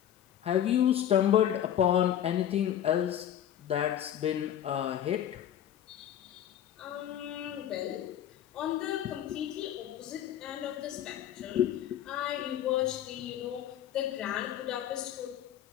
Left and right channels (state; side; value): quieter; right; 10.7 dB